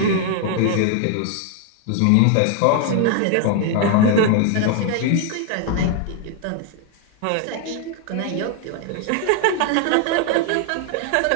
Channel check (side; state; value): both; different; correlation 0.00